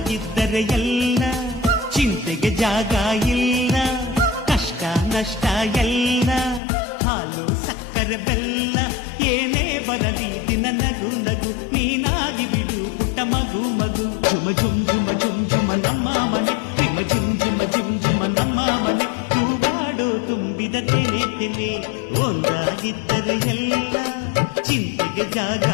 ಎಲ್ಲ ಚಿಂತೆಗೆ ಜಾಗ ಇಲ್ಲ, ಕಷ್ಟ ನಷ್ಟ ಎಲ್ಲ ಹಾಲು ಸಕ್ಕರೆ ಬೆಲ್ಲ ಏನೇ ಬರಲಿ ದಿನ ನಗು ನಗು ನೀನಾಗಿ ಬಿಡು ಪುಟ್ಟ ಮಗು ಮಗು. ಜುಮ ಜುಮ್ ಜುಮ ಜುಮ್ ಜುಮ ನಮ್ಮ ಮನೆ, ರಿಮ ಜಿಮ್ ಜಿಮ ಜಿಮ್ ಜಿಮ ನಮ್ಮ ಮನೆ, ತೂಗಾಡೋ ತುಂಬಿದ ತೆನೆ ತೆನೆ. ಒಂದಾಗಿದ್ದರೆ ಎಲ್ಲ ಚಿಂತೆಗೆ ಜಾಗ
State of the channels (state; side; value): drops out; right; at 6.6 s